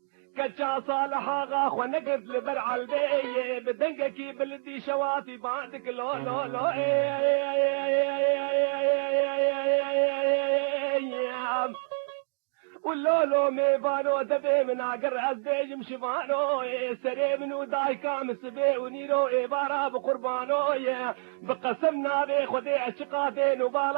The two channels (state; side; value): silent; left; 59 dB below the other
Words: كتشا صالح آغا خونقد لبرع البي بدنقكي بلدي شواتي بعدك لو لو لو واللولو ميبانو دبي من عقر عزبيج مشفانو سري منو دايكا مسبي ونيرو عبارة بقربانو بقسمنا بي خدي عشقا بين